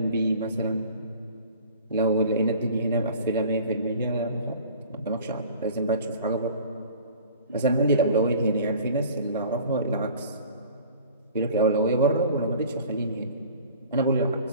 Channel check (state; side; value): inverted; both; correlation -0.46